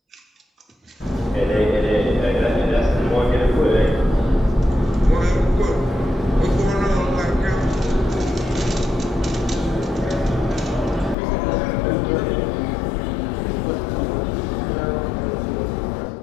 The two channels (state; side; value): drops out; right; at 11.2 s